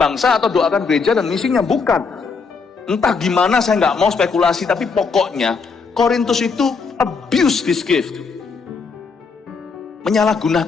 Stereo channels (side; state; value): right; quieter; 5.0 dB